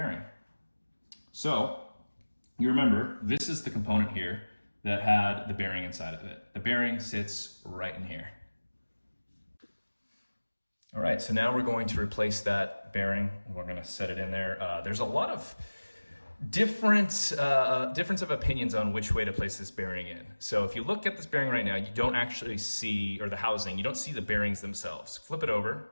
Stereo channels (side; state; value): both; inverted; correlation -1.00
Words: So, you remember, this is the component here that had the bearing inside of it. The bearing sits right in here. All right, so now we're going to replace that bearing. We're gonna set it in there. There's a lot of difference of opinions on which way to place this bearing in. So if you look at this bearing right now, you don't actually see, or the housing, you don't see the bearings themselves. Flip it over,